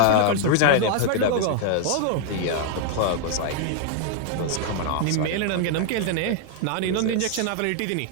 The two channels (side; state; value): both; different; correlation 0.00